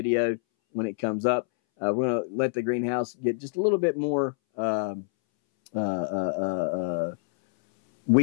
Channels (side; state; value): right; silent; 61 dB below the other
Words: when it comes up. We're going to let the greenhouse get just a little bit more